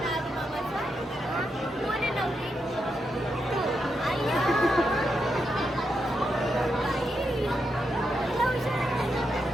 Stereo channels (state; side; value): normal; both; correlation 0.84